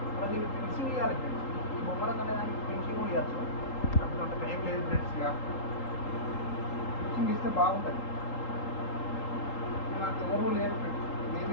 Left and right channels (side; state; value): right; late; 3.8 ms